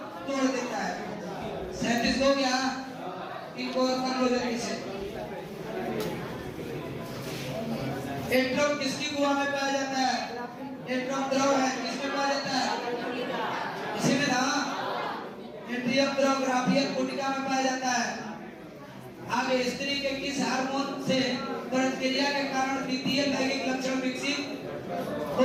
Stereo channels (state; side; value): identical; both; correlation 1.00